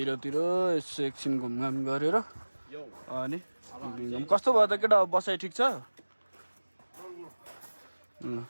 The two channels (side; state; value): both; inverted; correlation -1.00